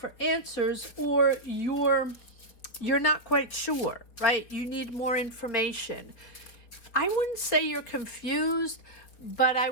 answers, or you're not quite sure, right? You need more information. I wouldn't say you're confused, but I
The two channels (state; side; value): late; right; 4.7 ms